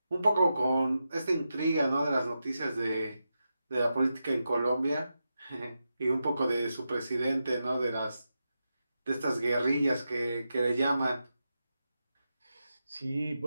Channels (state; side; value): inverted; both; correlation -0.89